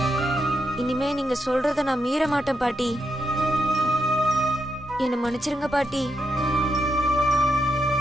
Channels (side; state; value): both; normal; correlation 0.83